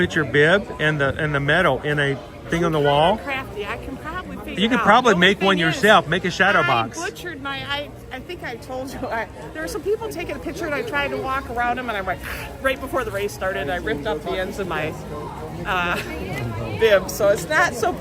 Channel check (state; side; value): identical; both; correlation 1.00